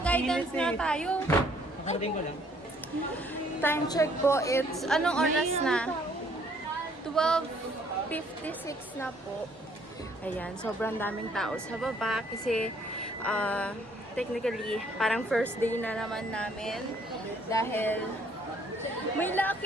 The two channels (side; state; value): both; normal; correlation 0.63